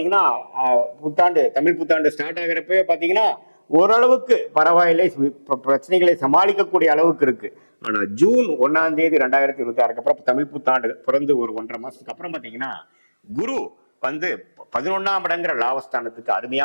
புத்தாண்டு தமிழ் புத்தாண்டு ஸ்டார்ட் ஆகிறப்பவே பாத்தீங்கன்னா ஓரளவுக்கு பரவாயில்லை, பிரச்சனைகளை சமாளிக்கக்கூடிய அளவுக்கு இருக்கு. ஆனா ஜூன் 1ஆம் தேதி 2026 அப்புறம் தமிழ் புத்தாண்டு பிறந்து ஒரு 1.5 மாசத்துக்கு அப்புறம் பாத்தீங்கன்னா குரு 11ஆம் இடங்கிற லாபஸ்தானத்துக்கு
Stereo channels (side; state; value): both; inverted; correlation -1.00